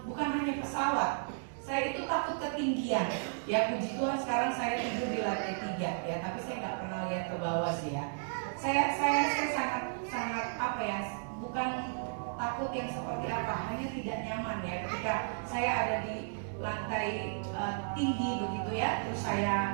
bukan hanya pesawat, saya itu takut ketinggian. Ya, puji Tuhan sekarang saya tidur di lantai 3, ya, tapi saya nggak pernah lihat ke bawah sih, ya. Saya sangat apa ya, bukan takut yang seperti apa, hanya tidak nyaman, ya, ketika saya ada di lantai tinggi begitu, ya, terus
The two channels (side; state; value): left; silent; digital silence